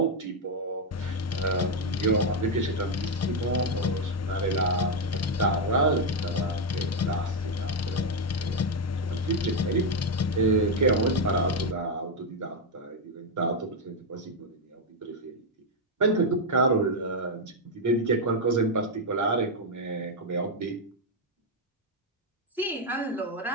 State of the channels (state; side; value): normal; both; correlation 0.03